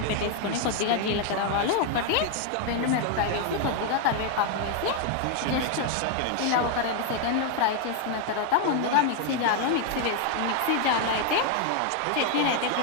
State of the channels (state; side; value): different; both; correlation 0.01